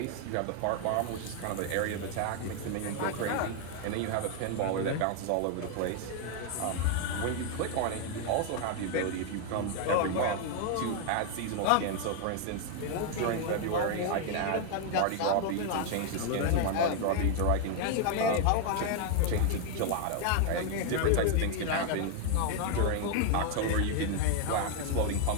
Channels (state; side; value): different; both; correlation 0.00